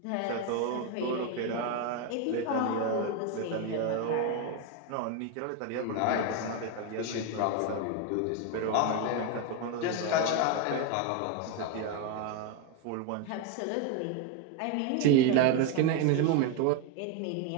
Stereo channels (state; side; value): different; both; correlation 0.02